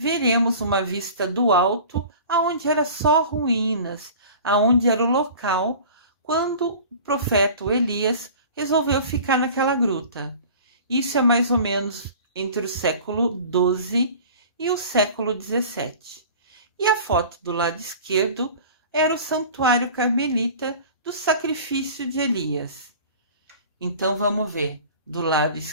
uma vista do alto, aonde era só ruínas, aonde era o local quando o profeta Elias resolveu ficar naquela gruta. Isso é mais ou menos entre o século XII e o século XVII. E a foto do lado esquerdo era o santuário carmelita do sacrifício de Elias. Então vamos ver, do lado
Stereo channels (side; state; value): both; inverted; correlation -0.41